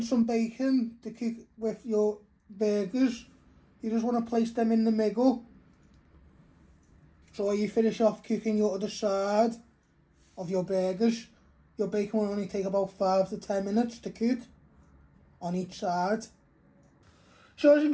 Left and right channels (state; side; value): identical; both; correlation 1.00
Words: some bacon to cook with your burgers. You just want to place them in the middle. So you finish off cooking your other side of your burgers. Your bacon will only take about 5 to 10 minutes to cook on each side. So as you